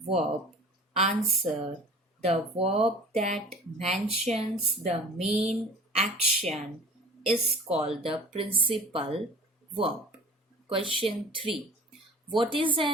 verb? Answer. The verb that mentions the main action is called the principal verb. Question 3. What is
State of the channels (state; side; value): normal; both; correlation 0.42